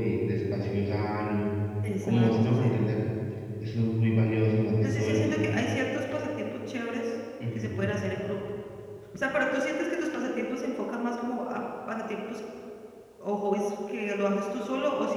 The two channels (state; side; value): identical; both; correlation 1.00